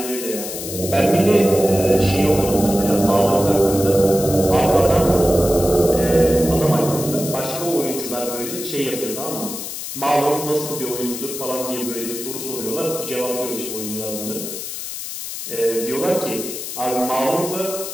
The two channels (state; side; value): noise; left; hiss, 7 dB below the sound